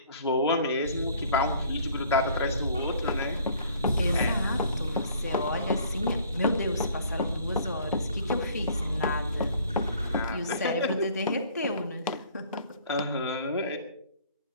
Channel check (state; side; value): inverted; both; correlation -0.55